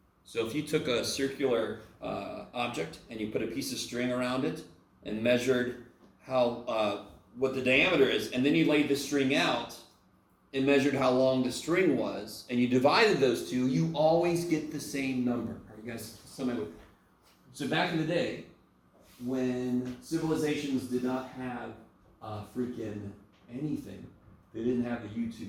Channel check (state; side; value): identical; both; correlation 1.00